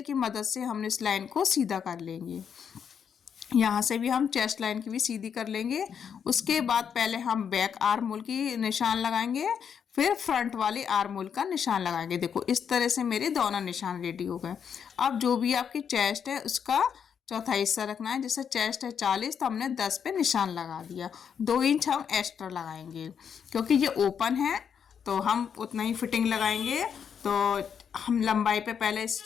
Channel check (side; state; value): right; quieter; 7.5 dB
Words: मदद से हमने इस लाइन को सीधा कर लेंगे। यहाँ से भी हम चेस्ट लाइन की भी सीधी कर लेंगे। उसके बाद पहले हम बैक आर्म होल की निशान लगाएंगे, फिर फ्रंट वाली आर्म होल का निशान लगाएंगे। देखो इस तरह से मेरे दोनों निशान रेडी हो गए। अब जो भी आपकी चेस्ट है उसका चौथा हिस्सा रखना है। जैसे चेस्ट है 40 तो हमने 10 पे निशान लगा दिया। 2 इंच हम एक्स्ट्रा लगाएंगे क्योंकि ये ओपन है तो हम उतना ही फिटिंग लगाएंगे। तो हम लंबाई पे पहले